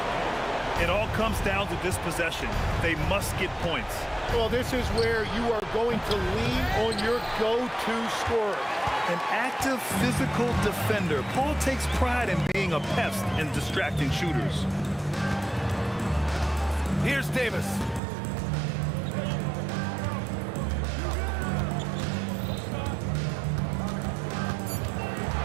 It all comes down to this possession. They must get points. Well, this is where you are going to lean on your go-to scorer. An active physical defender. Paul takes pride in being a pest and distracting shooters. Here's Davis.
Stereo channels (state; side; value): drops out; left; at 18.0 s